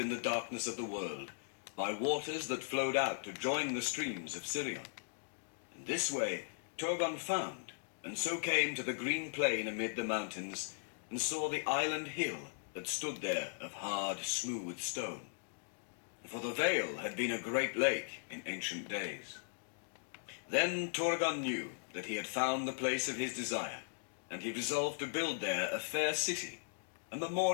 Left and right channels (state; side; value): silent; right; digital silence